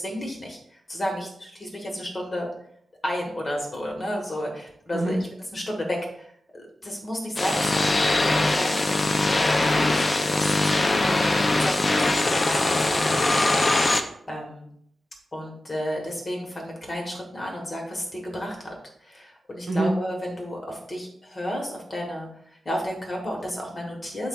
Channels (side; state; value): both; normal; correlation 0.94